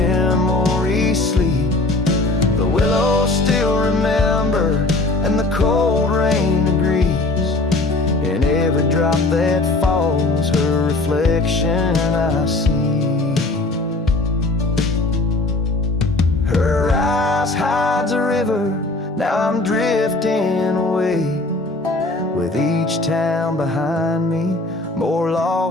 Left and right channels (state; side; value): quieter; right; 3.0 dB